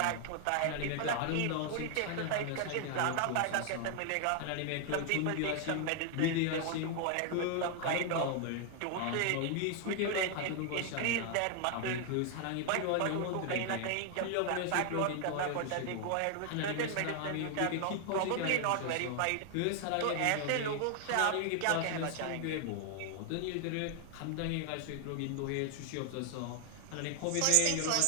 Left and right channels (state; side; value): different; both; correlation 0.00